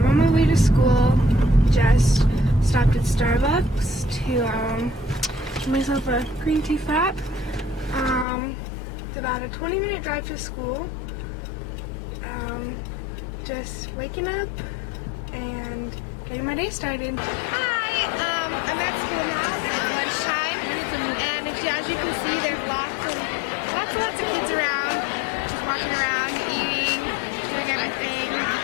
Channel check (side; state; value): right; drops out; at 8.2 s